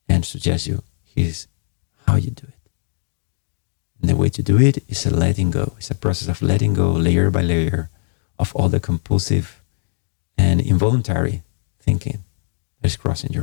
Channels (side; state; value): right; silent; digital silence